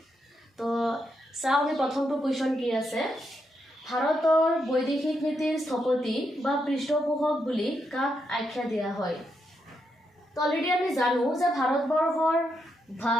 তো চাও আমি প্ৰথমটো কোৱেশ্চন কি আছে ভাৰতৰ বৈদেশিক নীতিৰ স্থপতি বা পৃষ্ঠপোষক বুলি কাক আখ্যা দিয়া হয় তো অলৰেডি আমি জানো যে ভাৰতবৰ্ষৰ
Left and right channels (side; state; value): both; normal; correlation 0.81